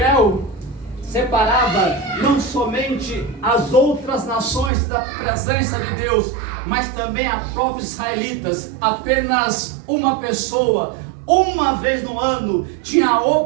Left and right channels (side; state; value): left; drops out; at 4.7 s